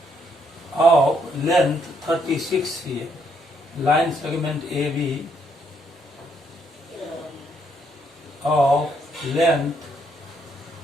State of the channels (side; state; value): both; normal; correlation 0.72